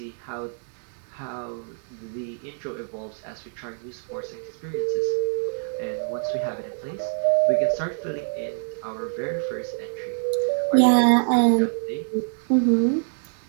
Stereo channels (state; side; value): silent; left; digital silence